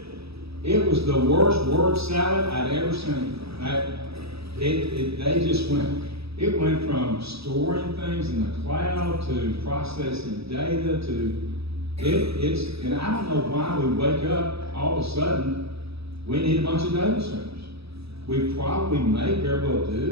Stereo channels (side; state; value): left; late; 0.77 ms